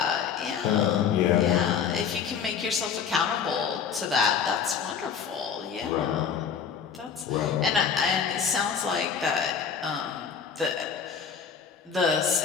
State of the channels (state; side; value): quieter; right; 6.9 dB